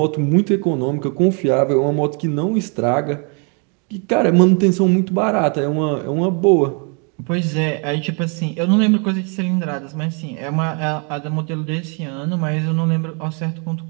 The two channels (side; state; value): left; quieter; 36.9 dB